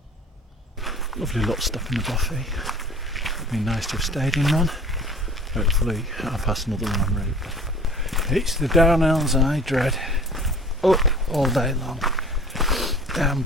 Lovely little stuff in the Buffy. It'd be nice to have stayed in one. Hopefully I'll pass another one en route. It's the downhills I dread. Up all day long.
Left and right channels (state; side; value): normal; both; correlation 0.45